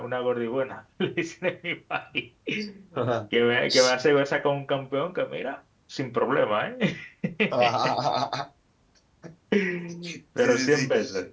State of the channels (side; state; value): both; identical; correlation 1.00